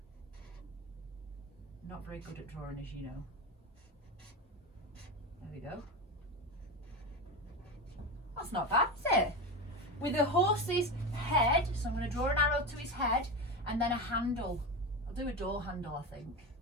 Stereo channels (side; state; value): both; normal; correlation 0.20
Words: Not very good at drawing, as you know. There we go. That's not bad, is it? With a horse's head, so I'm going to draw an arrow to his head, and then a handle. I'll do a door handle, I think.